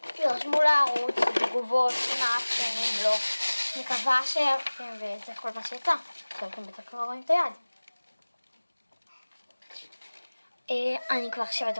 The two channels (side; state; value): both; inverted; correlation -1.00